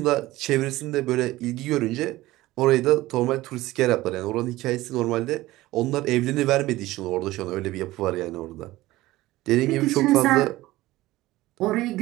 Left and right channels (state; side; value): quieter; left; 17.6 dB